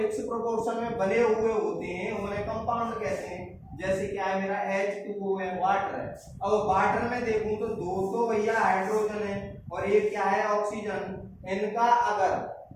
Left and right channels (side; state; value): both; identical; correlation 1.00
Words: प्रोपोर्शन में बने हुए होते हैं उन्हें कंपाउंड कहते हैं। जैसे क्या है मेरा H2O है, वाटर है। अब वाटर में देखूं तो दो तो भैया हाइड्रोजन है और एक क्या है ऑक्सीजन। इनका